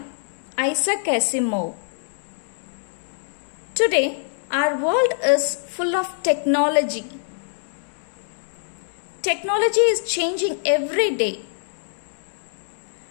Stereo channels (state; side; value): silent; right; digital silence